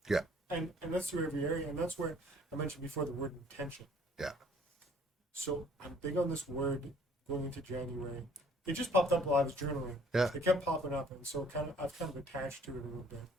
Yeah, And that's through every area, and that's where I mentioned before the word intention. yeah, So I'm big on this word going into January. It just popped up while I was journaling. Yeah. It kept popping up, and so I've kind of attached to it a little bit.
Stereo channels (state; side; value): normal; both; correlation 0.57